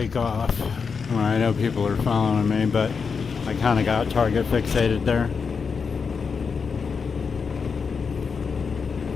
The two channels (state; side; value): quieter; right; 5.6 dB